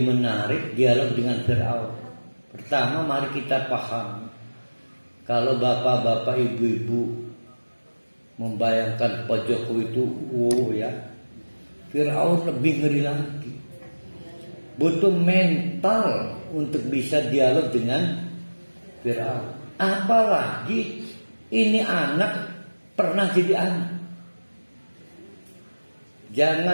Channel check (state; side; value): inverted; both; correlation -1.00